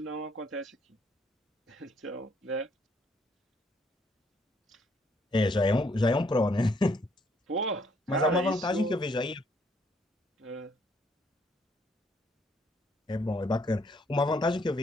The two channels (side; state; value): both; normal; correlation 0.68